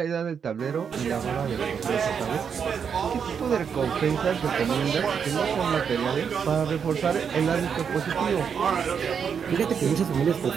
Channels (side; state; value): left; quieter; 7.0 dB